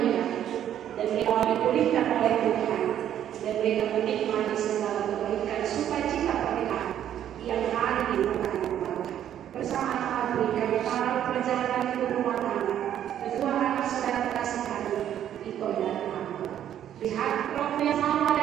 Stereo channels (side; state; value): left; quieter; 10.6 dB